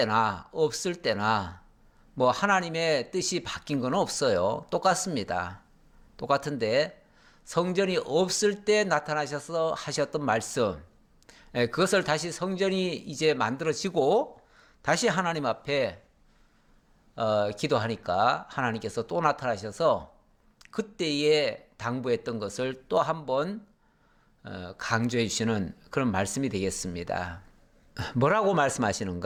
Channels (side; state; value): both; identical; correlation 1.00